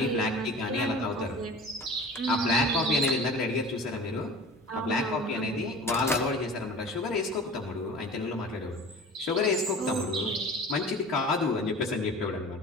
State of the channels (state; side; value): normal; both; correlation 0.40